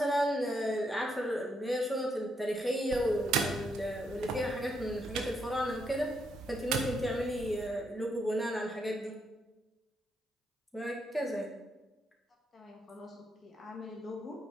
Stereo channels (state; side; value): normal; both; correlation 0.78